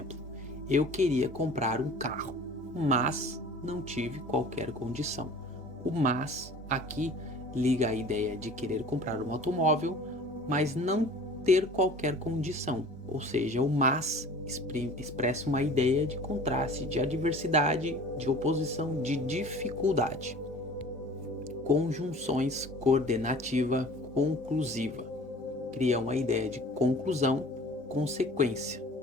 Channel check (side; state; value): both; normal; correlation 0.45